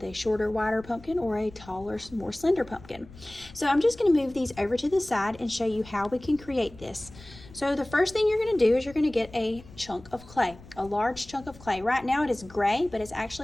a shorter, wider pumpkin or a taller, more slender pumpkin. So I'm just going to move these over to the side and show you how we can create this. So the first thing you're going to do is you're going to get a chunk of clay, a large chunk of clay. Right now it is gray, but it's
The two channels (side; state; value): left; noise; rumble, 20 dB below the sound